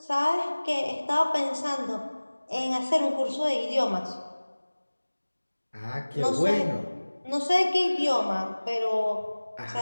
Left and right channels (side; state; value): both; inverted; correlation -1.00